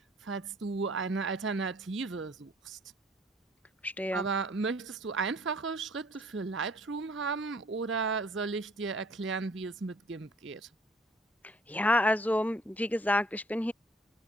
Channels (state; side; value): normal; both; correlation 0.57